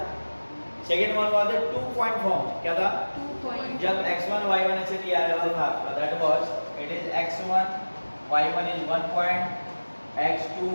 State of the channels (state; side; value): inverted; both; correlation -1.00